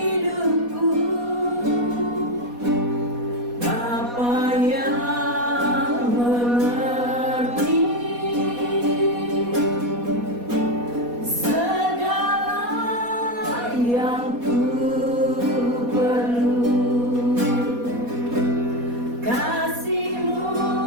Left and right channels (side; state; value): left; late; 4.2 ms